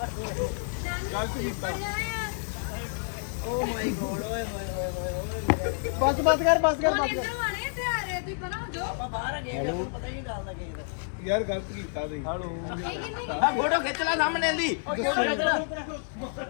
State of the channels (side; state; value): right; silent; digital silence